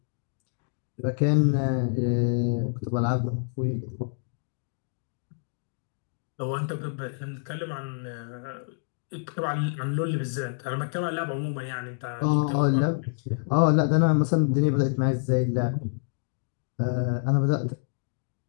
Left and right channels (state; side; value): silent; right; digital silence